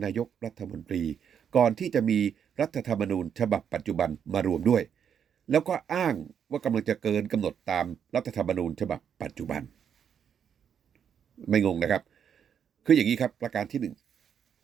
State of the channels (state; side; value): quieter; left; 8.0 dB